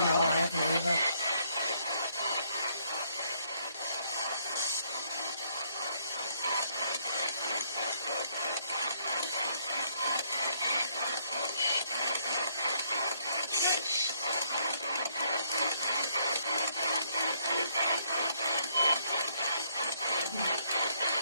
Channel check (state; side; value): inverted; both; correlation -0.70